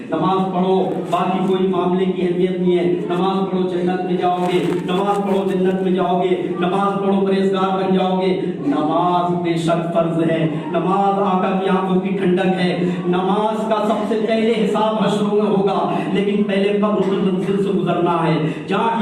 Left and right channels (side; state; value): both; identical; correlation 1.00